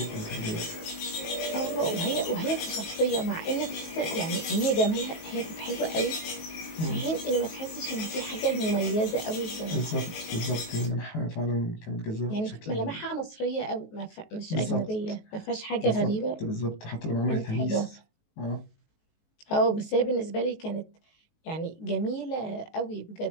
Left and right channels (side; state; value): right; late; 19 ms